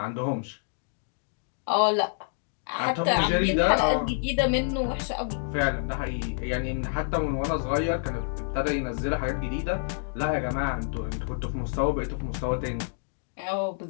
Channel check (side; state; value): right; silent; digital silence